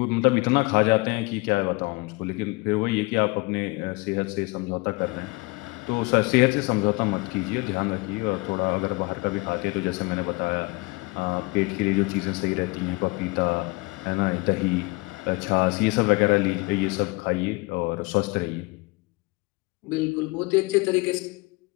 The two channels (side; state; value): right; quieter; 25.3 dB